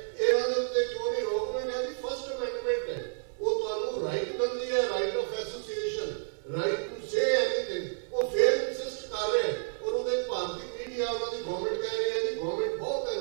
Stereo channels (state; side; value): silent; left; 58 dB below the other